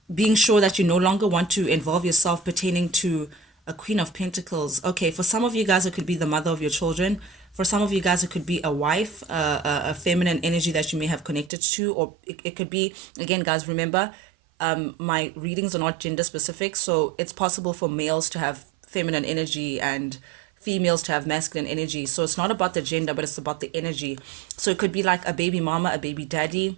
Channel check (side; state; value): left; drops out; at 11.5 s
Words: being sure that you no longer want to involve yourself pertaining to a Queen of Pentacles. Okay, for some of you guys, it could be the mother of your children. For some of you guys, it could be a wife, a feminine energy that you may have connected to, or it could be, again, guys, remember, my readings are not gender specific, so it's possible for males to have feminine energy and females to have masculine energy. So it's not about the gender, but it's about the energy. So it could be like a baby mama, a baby